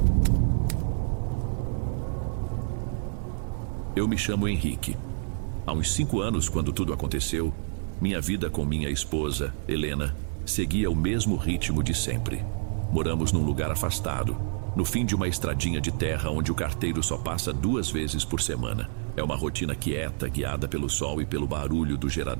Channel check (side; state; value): left; silent; digital silence